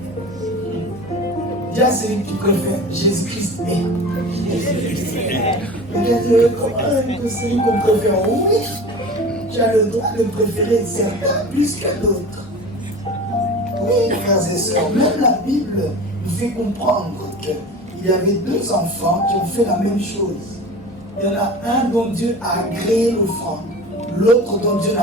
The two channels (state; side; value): normal; both; correlation 0.35